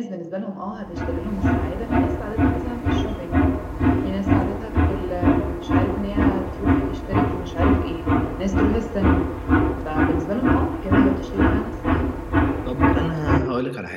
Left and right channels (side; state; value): both; identical; correlation 1.00